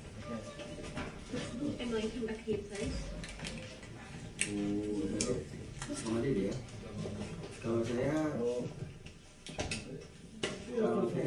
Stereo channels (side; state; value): both; identical; correlation 1.00